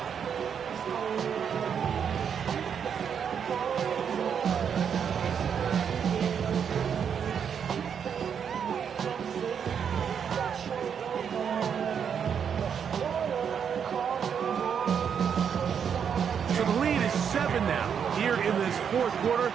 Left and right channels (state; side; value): quieter; left; 7.5 dB